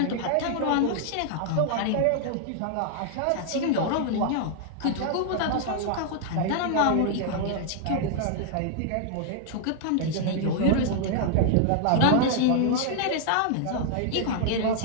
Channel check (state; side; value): different; both; correlation 0.00